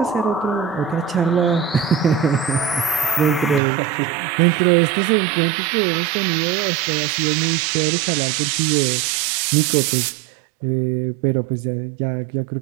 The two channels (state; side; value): drops out; left; at 3.6 s